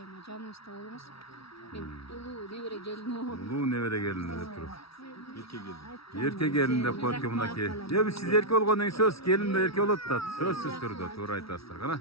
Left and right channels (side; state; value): right; late; 0.76 ms